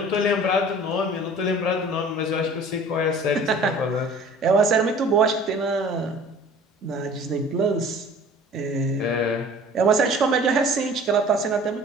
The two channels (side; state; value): both; normal; correlation 0.47